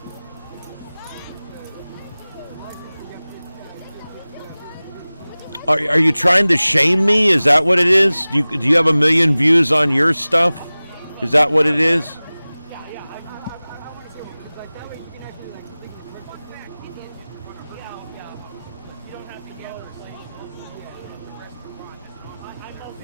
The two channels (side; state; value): both; inverted; correlation -0.99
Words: Are you trying to shame me? Is that what it is? Do you have 1 million views on your stuff? Is that what it is?